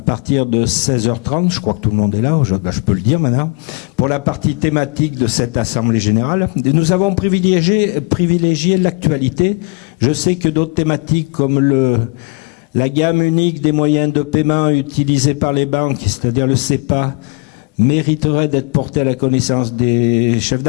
partir de 16h30, je crois que tout le monde est là, je peux le dire maintenant, pour la partie thématique de cette Assemblée Générale. Et nous avons privilégié l'actualité. Je sais que d'autres thématiques comme la gamme unique des moyens de paiement utilisés par les banques, c'est-à-dire le CEPA, mériterait d'être porté à la connaissance des chefs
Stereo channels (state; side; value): quieter; right; 32.0 dB